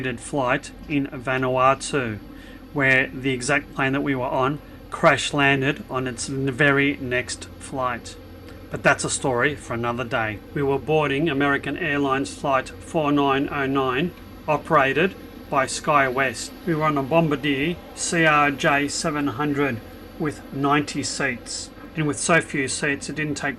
flight in Vanuatu, where the exact plane that we were on crash landed on its very next flight. But that's a story for another day. We were boarding American Airlines flight 4909, operated by SkyWest. We were on a Bombardier CRJ700 with 90 seats. And with so few seats, it didn't take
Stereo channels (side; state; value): both; identical; correlation 1.00